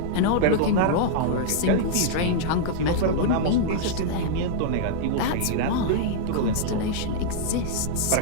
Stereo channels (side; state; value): both; different; correlation -0.01